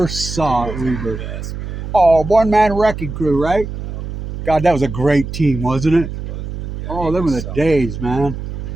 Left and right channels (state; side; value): noise; right; hum, 7 dB below the sound